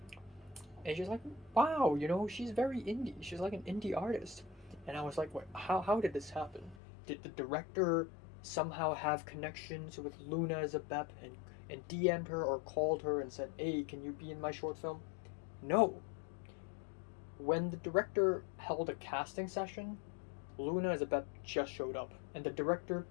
And she's like, wow, she's very indie. She's like an indie artist. And I was like, wait, how did this happen? Did the director somehow have connections with Luna as a Bep and DM'd her or called her and said, hey, can you be in my short film? No. When the director held a casting session, Luna as a Bep just showed up. And the director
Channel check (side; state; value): right; drops out; at 6.8 s